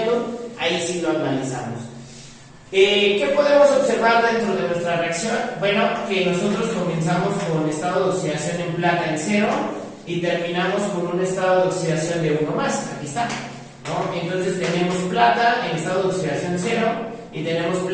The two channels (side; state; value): both; identical; correlation 1.00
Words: ahí sí lo analizamos. ¿Qué podemos observar dentro de nuestra reacción? Bueno, que nosotros comenzamos con estado de oxidación en plata en 0 y terminamos con un estado de oxidación de 1 más. Aquí está, ¿no? Entonces tenemos plata en estado de oxidación 0 y tenemos